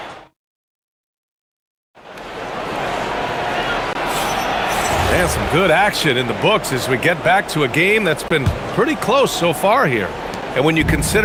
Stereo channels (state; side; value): identical; both; correlation 1.00